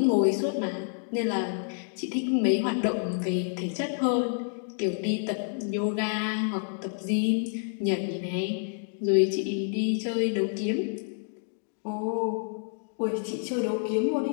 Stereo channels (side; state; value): right; silent; digital silence